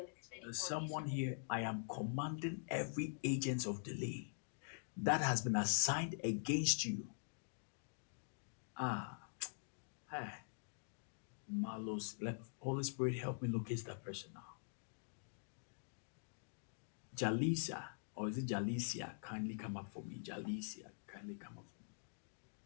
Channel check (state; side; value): silent; right; digital silence